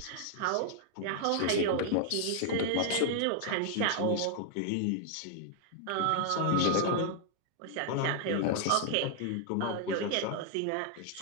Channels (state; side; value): different; both; correlation 0.00